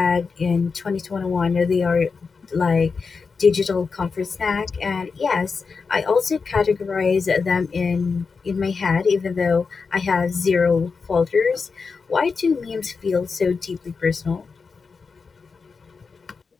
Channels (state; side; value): quieter; right; 4.9 dB